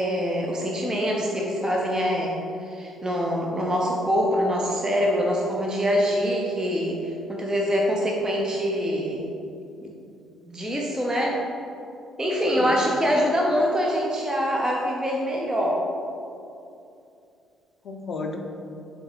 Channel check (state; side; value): normal; both; correlation 0.74